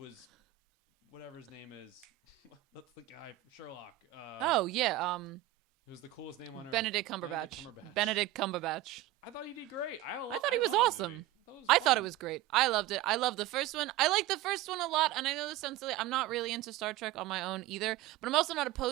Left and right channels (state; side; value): quieter; left; 14.8 dB